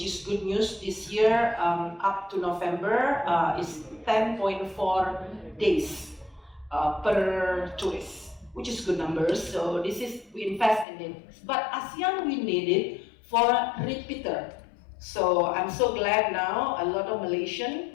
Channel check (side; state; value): right; drops out; at 10.9 s